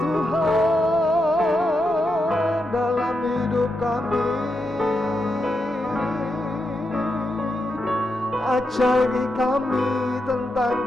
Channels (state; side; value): normal; both; correlation 0.85